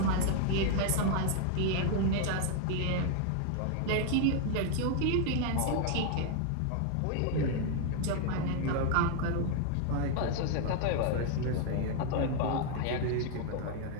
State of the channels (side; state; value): both; different; correlation 0.00